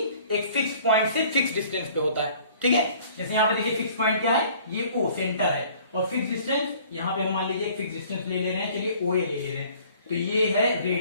एक फिक्स्ड पॉइंट से फिक्स्ड डिस्टेंस पे होता है। ठीक है, जैसे यहाँ पे देखिए फिक्स पॉइंट क्या है, ये ओ सेंटर है, और फिक्स डिस्टेंस यहाँ पे हम मान लीजिए एक फिक्स डिस्टेंस ले रहे हैं, चलिए ओ ए ले ले रहे हैं, तो ये है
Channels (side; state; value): both; inverted; correlation -0.53